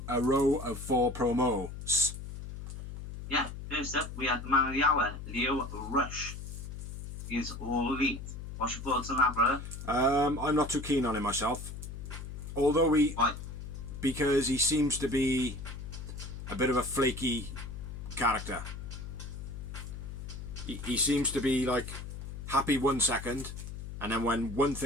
a row of 4 promos. Yeah, first up, we had the man of the hour, Lio Rush. He's all elite. What's your thoughts on that, brother? I'm not too keen on him myself. Although because he seems to be a bit of a flaky character. He seems to be like happy 1 second, and then when one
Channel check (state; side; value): noise; left; hum, 9 dB below the sound